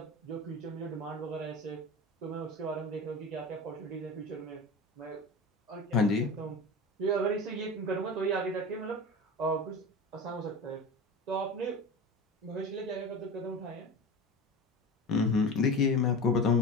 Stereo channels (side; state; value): both; normal; correlation 0.30